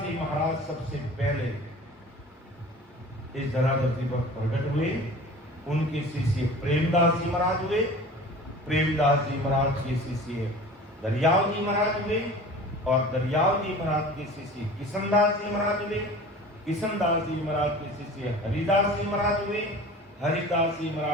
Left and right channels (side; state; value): both; normal; correlation 0.40